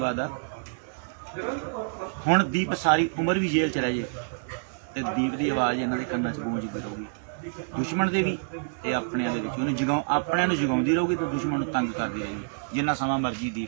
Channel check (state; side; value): silent; left; digital silence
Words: ਆ। ਹੁਣ ਦੀਪ ਸਾਰੀ ਉਮਰ ਵੀ ਜੇਲ੍ਹ ਚ ਰਹਿ ਜੇ ਤੇ ਦੀਪ ਦੀ ਆਵਾਜ਼ ਇਹਨਾਂ ਦੇ ਕੰਨਾਂ 'ਚ ਗੂੰਜਦੀ ਰਹੂਗੀ, ਦੁਸ਼ਮਣ ਦੇ ਵੀ ਤੇ ਆਪਣਿਆਂ ਦੇ ਵਿੱਚ। ਉਹਨੂੰ ਆਪਣਿਆਂ ਨੂੰ ਜਗਾਉਂਦੀ ਰਹੂਗੀ ਤੇ ਦੁਸ਼ਮਣ ਨੂੰ ਤੰਗ ਕਰਦੀ ਰਹੇਗੀ ਜਿੰਨਾ ਸਮਾਂ ਮਰਜ਼ੀ